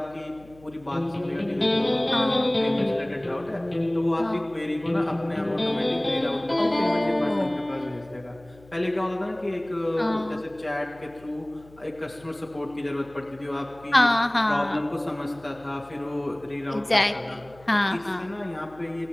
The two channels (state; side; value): noise; left; hum, 24 dB below the sound